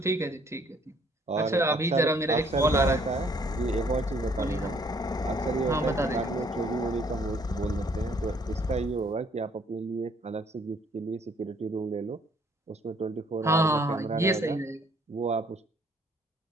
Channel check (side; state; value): both; normal; correlation 0.63